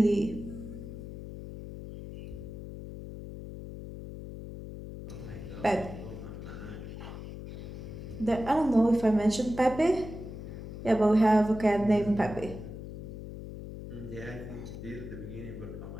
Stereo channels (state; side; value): noise; left; hum, 10 dB below the sound